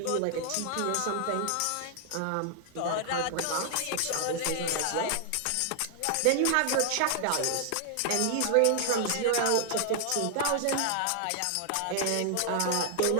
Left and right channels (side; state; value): both; different; correlation 0.00